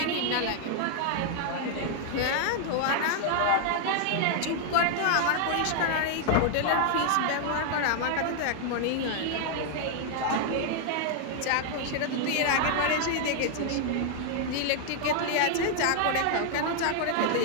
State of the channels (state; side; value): different; both; correlation 0.00